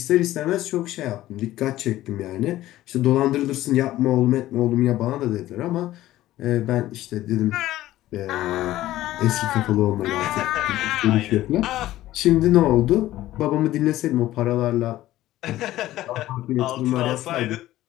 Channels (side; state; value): right; quieter; 15.0 dB